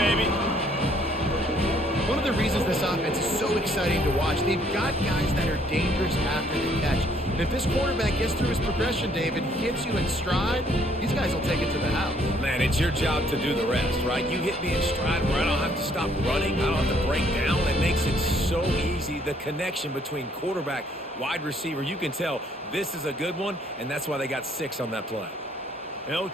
One of the reasons this offense is so exciting to watch, they've got guys that are dangerous after the catch. And if this quarterback gets through his progression, David, hits you in stride, these guys will take it to the house. Man, it's your job to do the rest, right? You hit me in stride where I don't have to stop running. I don't have to break down. It makes it so easy. The connection between quarterback, wide receiver, you can tell this is a good one, and that's why they got 6 on that play. They'll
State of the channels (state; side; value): normal; both; correlation 0.65